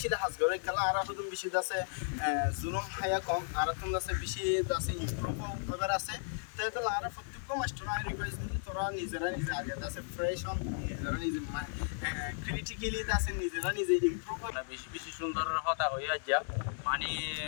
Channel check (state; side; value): silent; right; digital silence